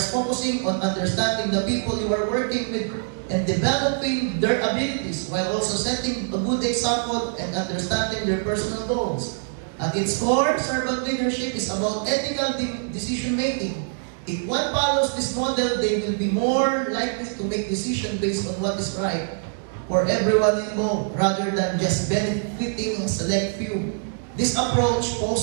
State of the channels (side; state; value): left; silent; digital silence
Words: focusing on understanding the people you are working with and developing their abilities while also setting a good example and understanding their personal goals. At its core, servant leadership is about ethical decision-making. If one follows this model, they will be more likely to make decisions based on what is right for everyone involved, rather than just benefiting a select few. This approach